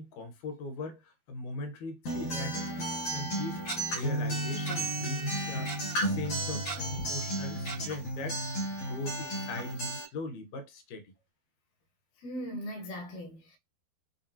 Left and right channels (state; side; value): late; right; 12 ms